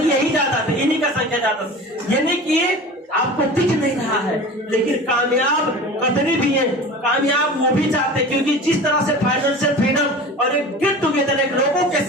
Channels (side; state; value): both; normal; correlation 0.36